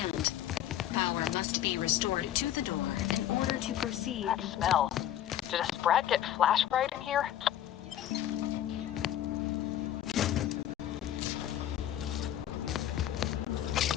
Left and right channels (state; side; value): quieter; right; 11.8 dB